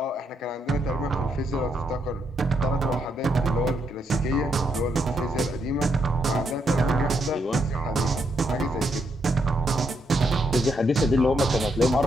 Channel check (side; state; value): both; normal; correlation 0.78